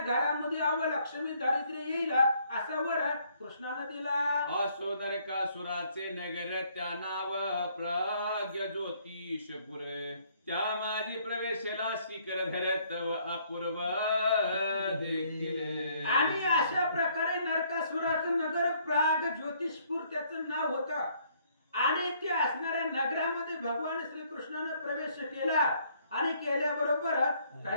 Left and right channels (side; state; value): both; inverted; correlation -0.65